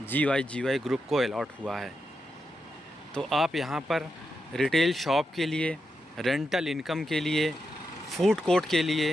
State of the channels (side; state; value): both; normal; correlation 0.86